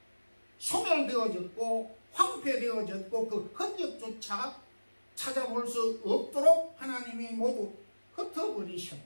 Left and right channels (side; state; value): both; inverted; correlation -1.00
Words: 소멸되어졌고 황폐되어졌고 그 흔적조차 찾아볼 수 없도록 하나님이 모두